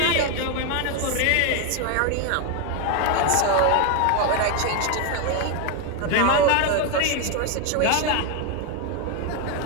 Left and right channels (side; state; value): both; different; correlation 0.01